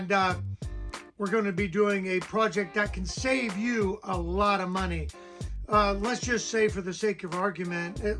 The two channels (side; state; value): both; identical; correlation 1.00